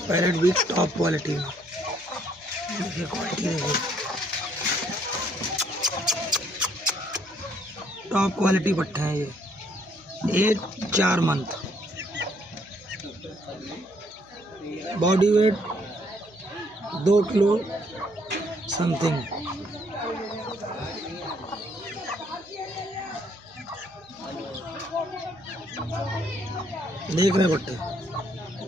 पैरेट भी टॉप क्वालिटी में। देखिए क्वालिटी देखिए, टॉप क्वालिटी पट्टे हैं ये। Age 4 month. Body weight 2 kilo something. देख रहे पट्टे,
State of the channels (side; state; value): right; noise; hum, 29 dB below the sound